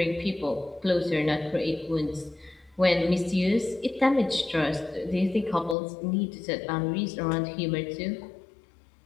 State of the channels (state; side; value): drops out; right; at 5.8 s